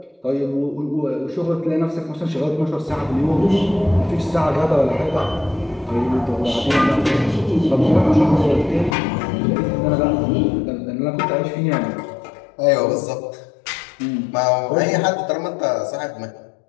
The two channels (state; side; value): drops out; right; at 9.0 s